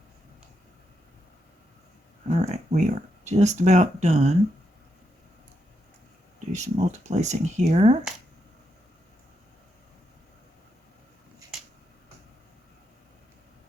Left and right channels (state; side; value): normal; both; correlation 0.82